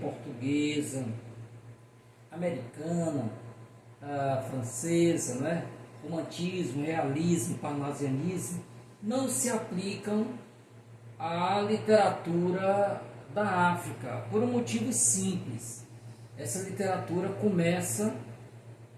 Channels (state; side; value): identical; both; correlation 1.00